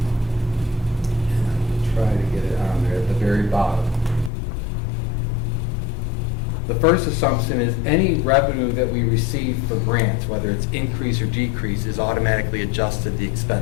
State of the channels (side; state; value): right; drops out; at 4.3 s